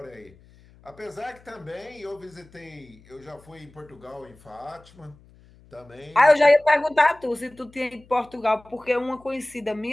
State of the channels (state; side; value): noise; left; hum, 26 dB below the sound